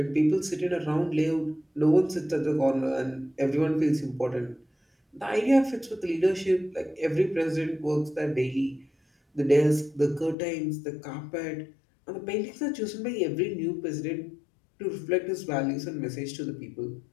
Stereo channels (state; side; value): drops out; right; at 10.4 s